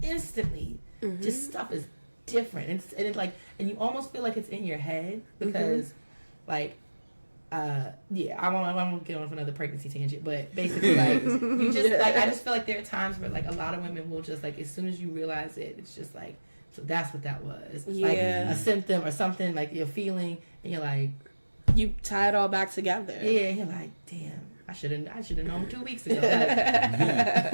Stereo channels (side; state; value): both; inverted; correlation -1.00